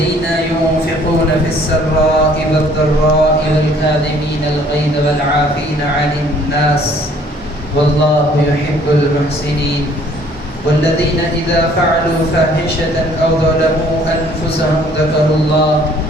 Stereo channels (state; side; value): normal; both; correlation 0.58